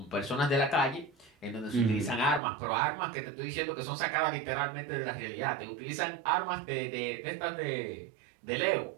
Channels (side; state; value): left; drops out; at 2.4 s